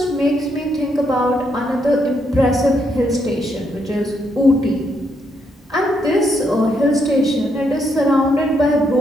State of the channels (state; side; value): normal; both; correlation 0.76